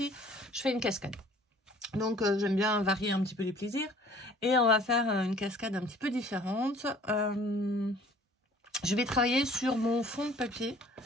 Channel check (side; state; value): both; normal; correlation 0.52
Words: je fais une cascade. Donc, j'aime bien varier un petit peu les plaisirs. Et on va faire une cascade un petit peu différente. Je vais travailler sur mon fond de papier.